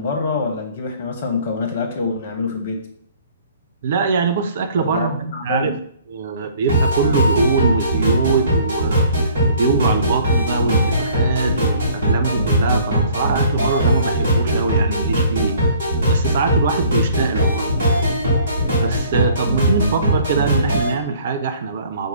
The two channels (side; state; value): both; inverted; correlation -0.55